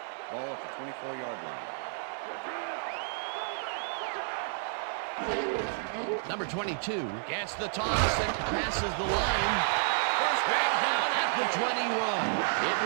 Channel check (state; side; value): silent; left; digital silence